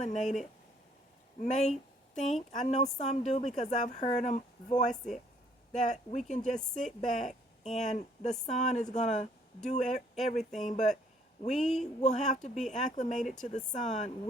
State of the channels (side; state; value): both; normal; correlation 0.63